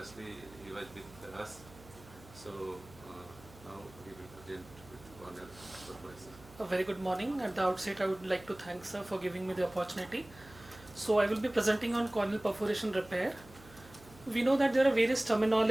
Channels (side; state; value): right; noise; hum, 21 dB below the sound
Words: he was with us. So now he will present with corneal perforation. A very good morning. At the outset, I would like to thank sir for giving me the opportunity. So I will be presenting on corneal perforation repair. We know that there are various